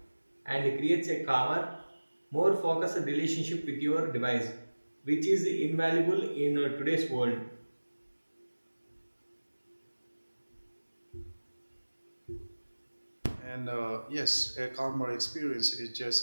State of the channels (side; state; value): both; inverted; correlation -1.00